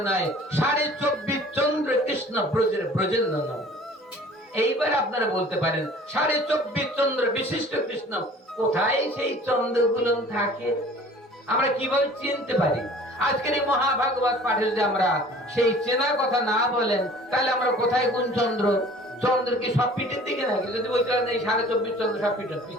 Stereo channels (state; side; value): normal; both; correlation 0.48